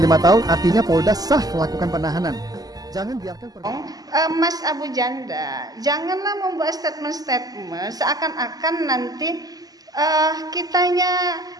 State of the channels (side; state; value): left; late; 0.18 ms